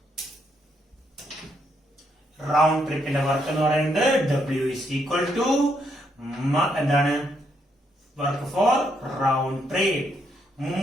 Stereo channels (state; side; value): normal; both; correlation 0.76